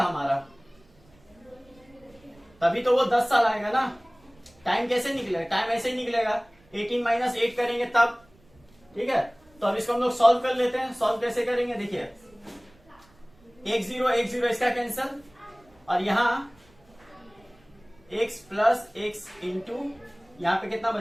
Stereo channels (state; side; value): noise; right; rumble, 30 dB below the sound